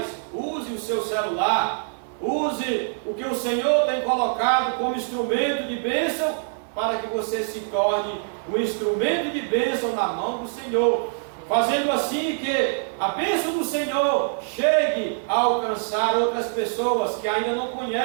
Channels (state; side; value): silent; left; digital silence